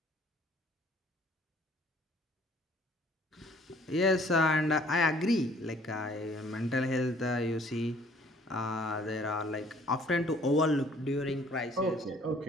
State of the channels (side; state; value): both; normal; correlation 0.57